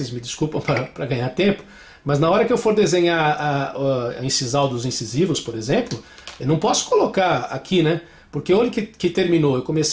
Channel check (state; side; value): identical; both; correlation 1.00